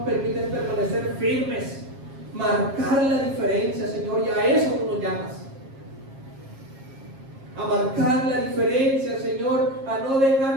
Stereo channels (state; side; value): late; left; 7.4 ms